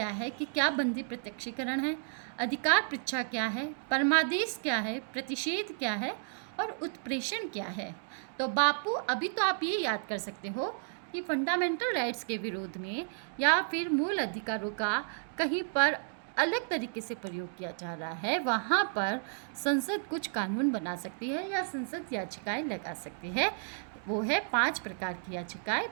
है कि क्या बंदी प्रत्यक्षीकरण है, अधिकार पृच्छा क्या है, परमादेश क्या है, प्रतिषेध क्या है और उत्प्रेषण क्या है। तो बापू, अभी तो आप ये याद कर सकते हो कि फंडामेंटल राइट्स के विरोध में या फिर मूल अधिकारों का कहीं पर अलग तरीके से प्रयोग किया जा रहा है, वहाँ पर संसद कुछ कानून बना सकती है या संसद याचिकाएं लगा सकती है। वो है 5 प्रकार की याचिकाएं:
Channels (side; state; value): left; silent; digital silence